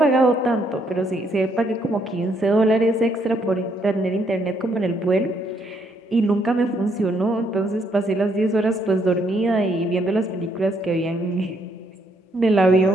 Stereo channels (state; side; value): normal; both; correlation 0.72